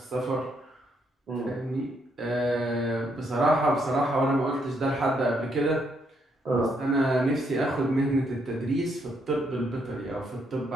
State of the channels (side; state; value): both; normal; correlation 0.75